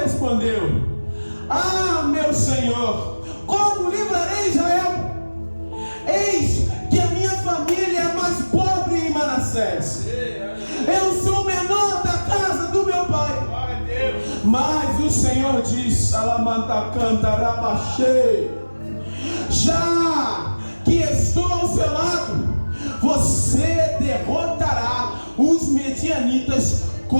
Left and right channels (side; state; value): both; inverted; correlation -1.00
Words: ah, meu Senhor, como livrarei Israel? Eis que a minha família é mais pobre em Manassés. Eu sou o menor da casa do meu pai. Mas o Senhor diz: Alamanta canta rabaxê, já que estou ao seu lado, você derrotará os medianitas